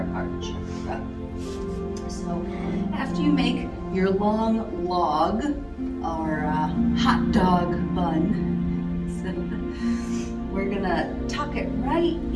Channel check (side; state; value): both; identical; correlation 1.00